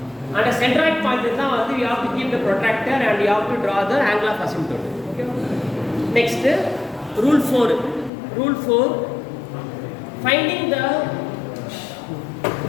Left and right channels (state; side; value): drops out; right; at 8.1 s